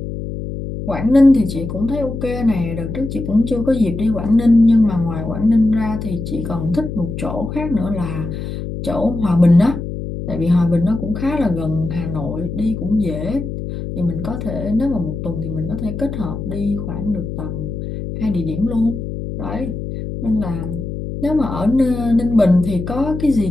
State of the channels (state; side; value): noise; left; hum, 6 dB below the sound